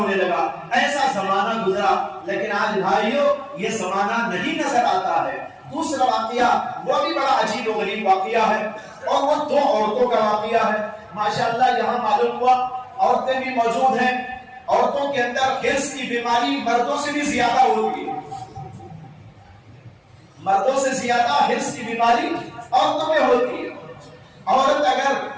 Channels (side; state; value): both; identical; correlation 1.00